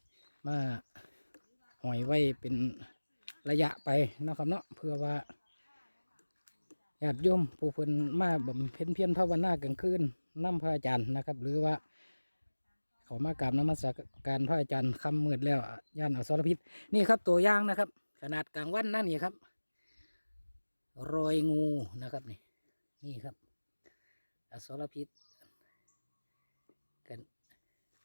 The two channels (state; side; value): inverted; both; correlation -1.00